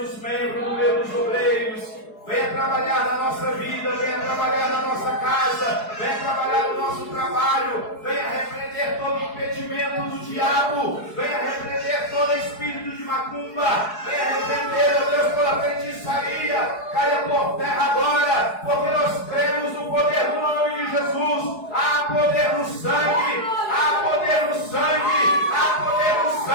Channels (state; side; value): late; right; 4.7 ms